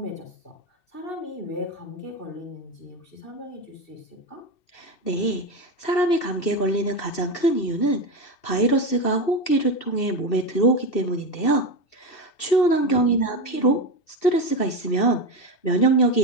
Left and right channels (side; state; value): right; late; 2.7 ms